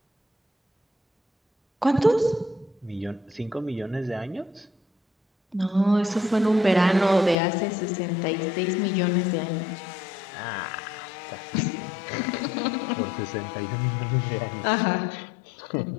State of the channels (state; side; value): drops out; right; at 7.4 s